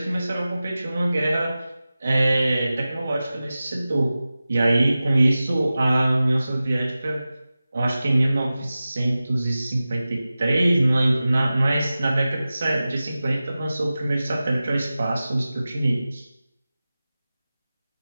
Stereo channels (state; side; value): inverted; both; correlation -0.96